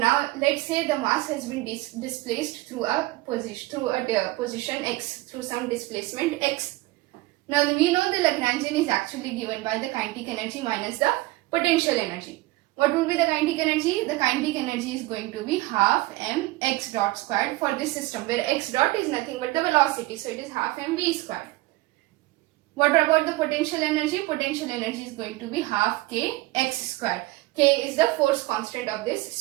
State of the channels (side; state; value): left; quieter; 19.7 dB